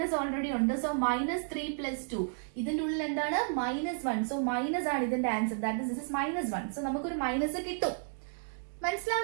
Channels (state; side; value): silent; left; digital silence